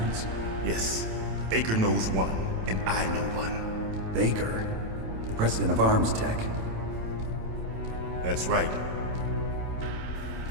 Yes. Baker knows one, and I know one. Baker? The president of Arms Tech? That's right.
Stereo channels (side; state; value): left; late; 27 ms